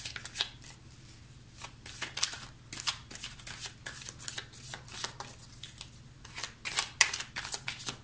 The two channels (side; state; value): both; identical; correlation 1.00